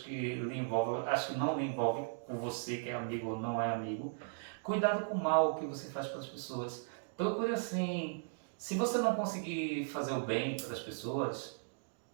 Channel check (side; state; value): left; silent; digital silence